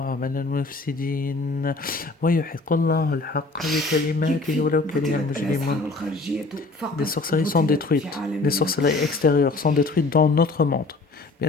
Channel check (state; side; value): quieter; right; 3.4 dB